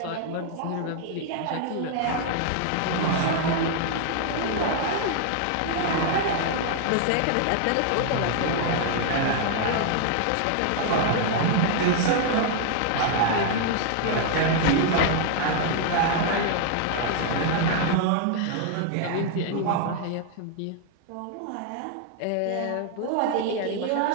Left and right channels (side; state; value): both; different; correlation 0.00